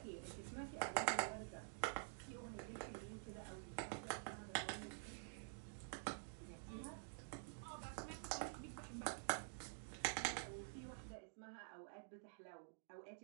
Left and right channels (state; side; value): silent; left; digital silence